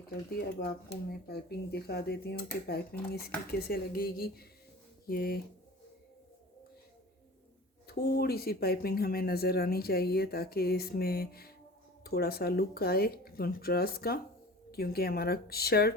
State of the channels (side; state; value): both; normal; correlation 0.40